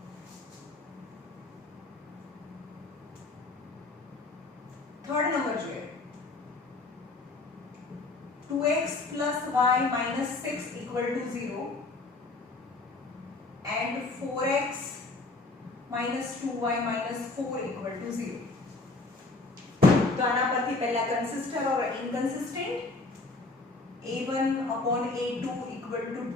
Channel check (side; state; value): right; quieter; 3.4 dB